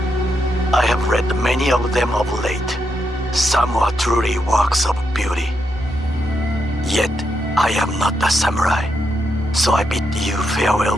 I have read many of them of late. Some are truly works of beauty. Yet, I am not a samurai, so I bid you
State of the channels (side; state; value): left; noise; hum, 26 dB below the sound